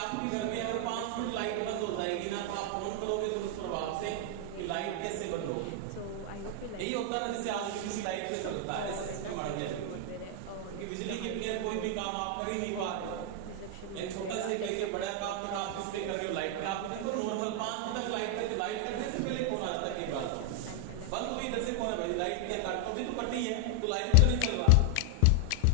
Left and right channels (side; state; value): both; different; correlation 0.00